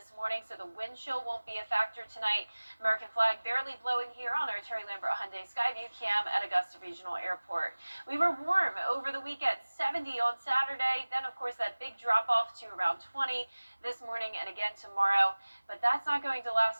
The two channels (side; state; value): both; inverted; correlation -1.00